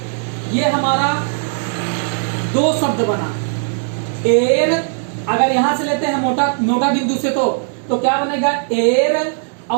ये हमारा दो शब्द बना। एर, अगर यहां से लेते हैं मोटा बिंदु से तो क्या बनेगा, एर।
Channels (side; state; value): left; silent; digital silence